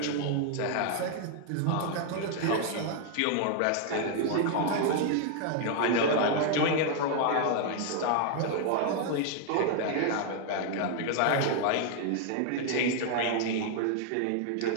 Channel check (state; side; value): different; both; correlation 0.00